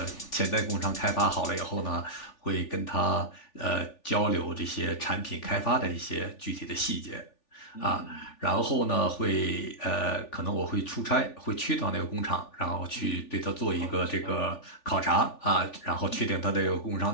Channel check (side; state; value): right; late; 3.4 ms